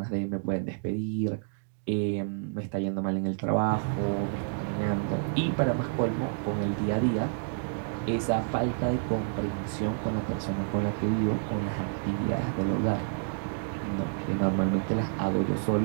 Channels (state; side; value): silent; left; digital silence